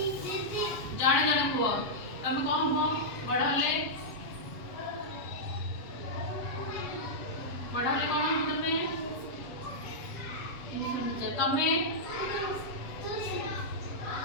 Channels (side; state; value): right; late; 7.5 ms